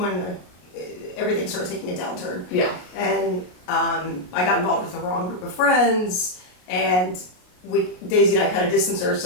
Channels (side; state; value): right; late; 33 ms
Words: everything started taking a downturn. Yeah. And I got involved with the wrong group of friends, and Daisy and I kind of distanced